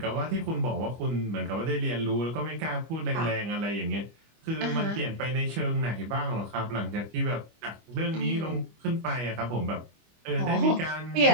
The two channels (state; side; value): late; left; 25 ms